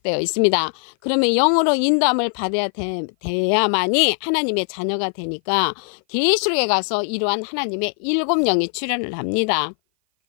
있습니다. 그러면 영으로 인도함을 받아야 돼야만이 하나님의 자녀가 되니까 계시록에 가서 이러한 하나님의 7영이 출현을 합니다.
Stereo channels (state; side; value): silent; right; 57 dB below the other